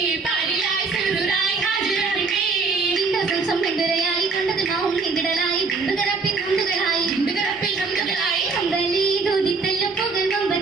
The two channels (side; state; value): left; quieter; 4.4 dB